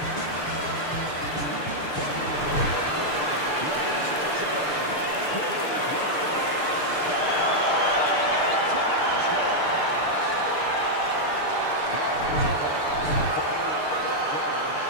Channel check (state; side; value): late; right; 6.7 ms